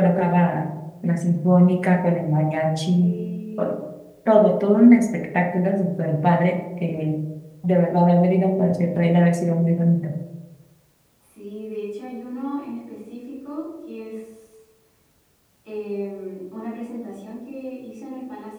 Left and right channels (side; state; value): both; identical; correlation 1.00